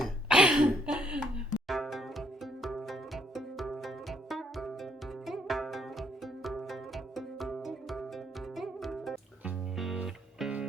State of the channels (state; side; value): normal; both; correlation 0.70